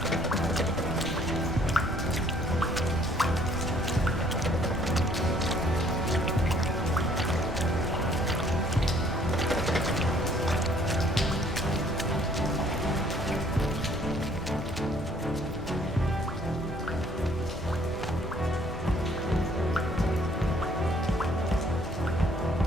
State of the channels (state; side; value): normal; both; correlation 0.61